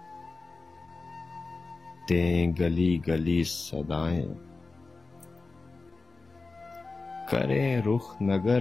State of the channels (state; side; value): quieter; right; 3.8 dB